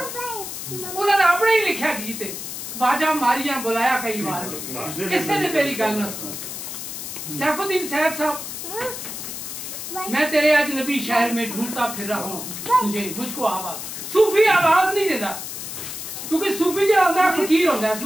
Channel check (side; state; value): left; noise; hiss, 8 dB below the sound